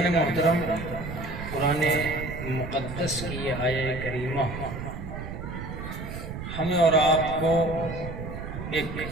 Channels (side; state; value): right; noise; rumble, 8 dB below the sound